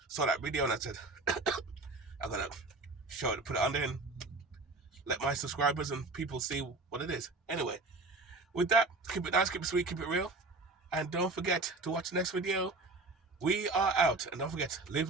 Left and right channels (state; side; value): quieter; left; 3.3 dB